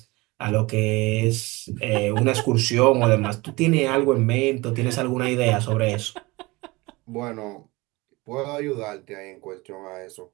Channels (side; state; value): left; quieter; 22.9 dB